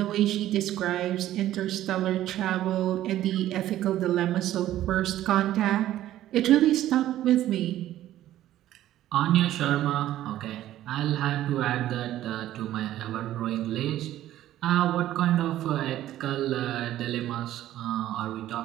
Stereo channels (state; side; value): quieter; left; 13.4 dB